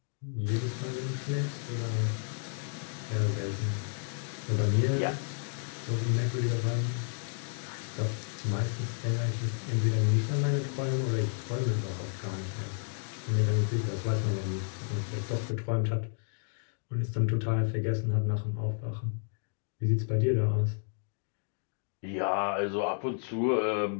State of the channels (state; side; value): silent; right; 57 dB below the other